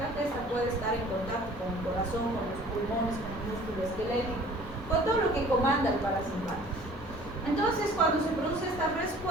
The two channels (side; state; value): both; normal; correlation 0.50